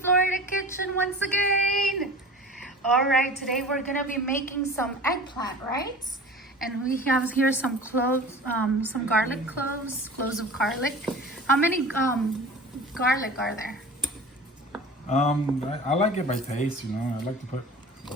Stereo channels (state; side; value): normal; both; correlation 0.38